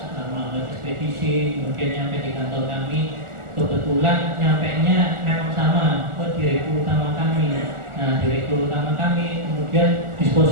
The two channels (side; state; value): left; late; 1.4 ms